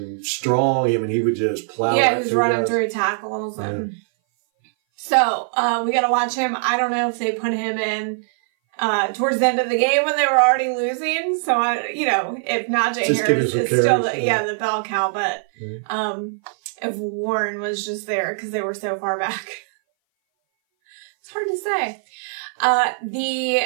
strong. I mean, he would just plow. Yeah, he was running through tackles. And so, we got to watch him. I don't know if they put him in towards the end of the game when they were already losing. So, if Najee Harris is still the bell cow. But if Warren was just there because they were so far back. It's hard to say.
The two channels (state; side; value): silent; left; 59 dB below the other